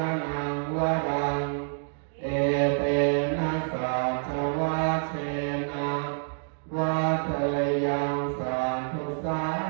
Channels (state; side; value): silent; left; digital silence